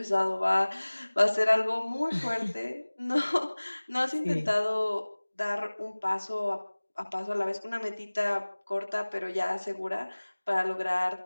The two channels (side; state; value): both; inverted; correlation -1.00